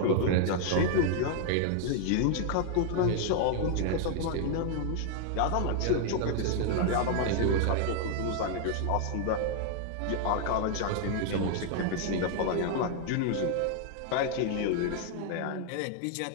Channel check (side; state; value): both; different; correlation 0.00